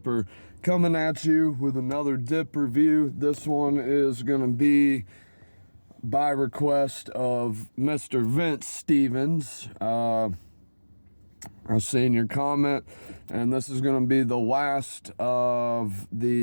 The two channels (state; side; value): inverted; both; correlation -1.00